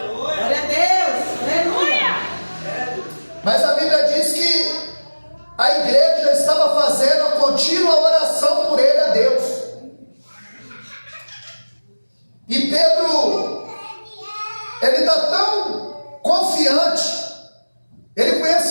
Glória a Deus. Aleluia. Mas a Bíblia diz que a igreja estava fazendo a contínua oração por ele a Deus. E Pedro, ele está tão confiante, ele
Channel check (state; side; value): inverted; both; correlation -1.00